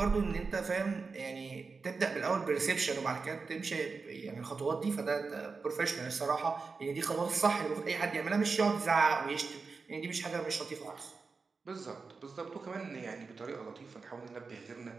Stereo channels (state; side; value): quieter; left; 4.5 dB